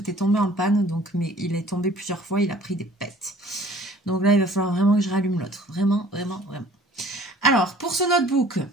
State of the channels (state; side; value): normal; both; correlation 0.52